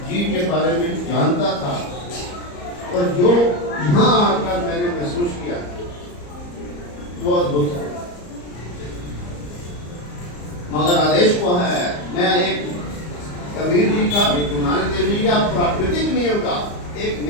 जी के बारे में जानता था और जो यहाँ आकर मैंने महसूस किया वो अद्भुत है। मगर आदेश को है, मैं एक कबीर जी का, गुरु नानक देव जी का प्राकृतिक नियम का एक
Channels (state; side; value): late; right; 34 ms